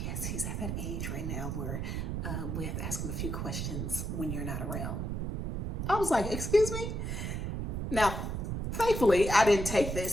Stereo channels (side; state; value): right; noise; rumble, 2 dB below the sound